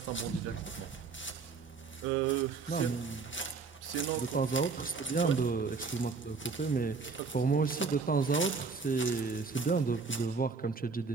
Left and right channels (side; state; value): left; quieter; 4.7 dB